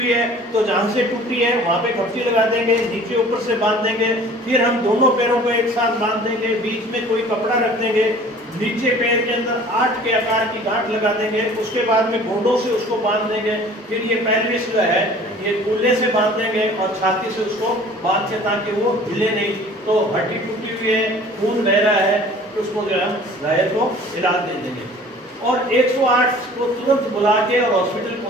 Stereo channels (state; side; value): normal; both; correlation 0.48